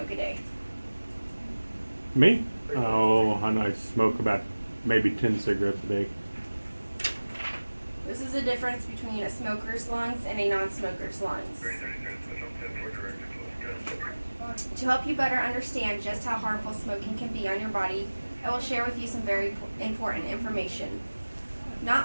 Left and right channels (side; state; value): both; inverted; correlation -1.00